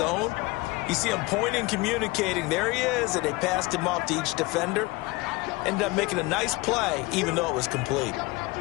you see him pointing, communicating. There he is, and they passed him off to each defender. Ended up making a nice play, even though it was complete.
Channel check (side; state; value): right; quieter; 22.5 dB